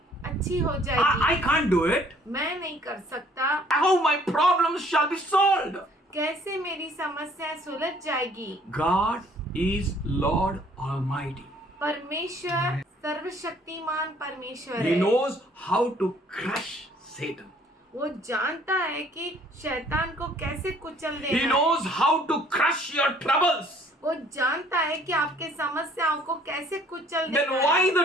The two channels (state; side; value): normal; both; correlation 0.59